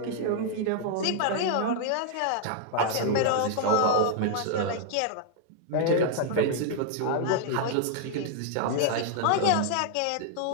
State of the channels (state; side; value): different; both; correlation 0.00